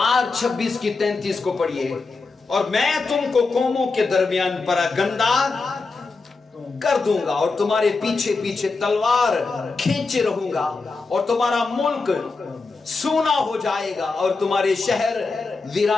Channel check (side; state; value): right; quieter; 4.0 dB